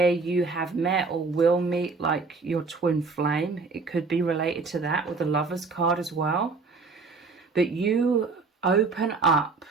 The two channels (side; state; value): left; quieter; 4.3 dB